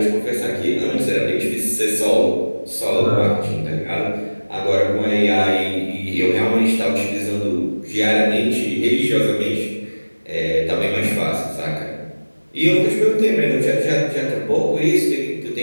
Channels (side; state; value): both; inverted; correlation -1.00